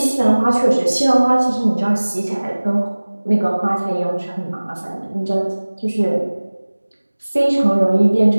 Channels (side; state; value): both; inverted; correlation -1.00